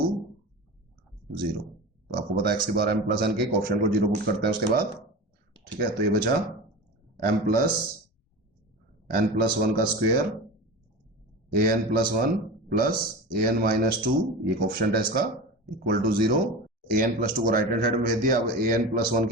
0। तो आपको पता है x की पावर m प्लस n के कोफिशिएंट को 0 पुट करते हैं उसके बाद। ठीक है, तो ये बचा m प्लस n प्लस 1 का square a n plus 1 plus a n minus 2, ये कोफिशिएंट है इसका, equal to 0। a n plus 2 को राइट हैंड साइड में भेज दिया। अब a n प्लस 1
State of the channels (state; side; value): normal; both; correlation 0.29